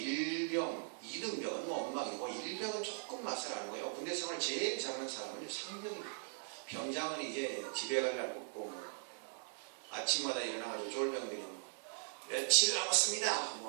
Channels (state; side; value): silent; left; digital silence